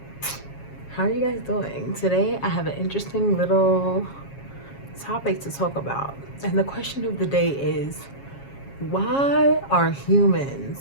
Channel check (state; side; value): late; right; 7.3 ms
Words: how are you guys doing? Today I have an interesting little topic to talk about. And the question of the day is, why are